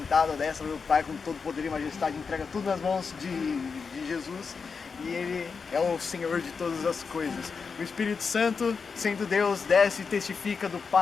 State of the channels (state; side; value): quieter; right; 5.3 dB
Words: à destra do Pai com todo poder e majestade, entrega tudo nas mãos de Jesus e ele é o Senhor de todas as coisas. O Espírito Santo, sendo Deus, desce e testifica do